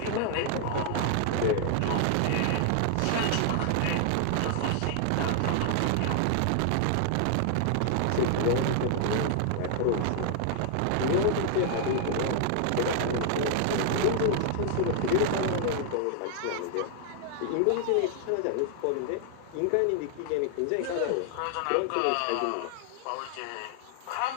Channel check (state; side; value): different; both; correlation 0.00